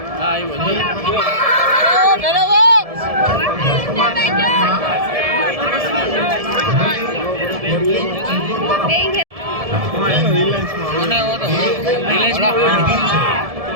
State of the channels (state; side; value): late; left; 1.7 ms